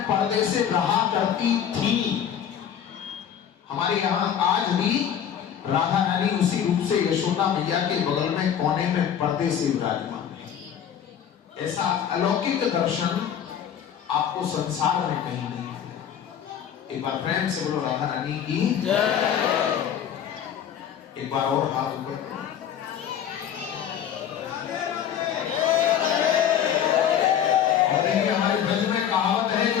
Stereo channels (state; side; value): quieter; right; 9.0 dB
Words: पर्दे से रहा करती थी, हमारे यहाँ आज भी राधा रानी उसी रूप से यशोदा मैया के बगल में कोने में पर्दे से विराजमान है। ऐसा अलौकिक दर्शन आपको संसार में कहीं नहीं। एक बार प्रेम से बोलो राधा रानी की जय। एक बार और हाथ ऊपर। और देखिए हमारे ब्रज में कहावत है,